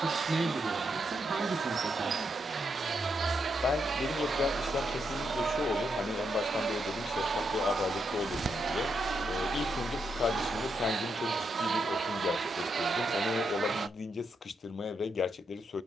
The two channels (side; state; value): both; normal; correlation 0.81